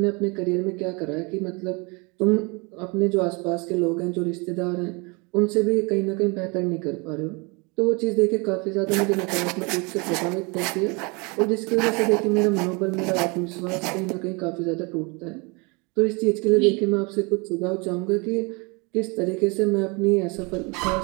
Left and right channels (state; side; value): quieter; left; 29.4 dB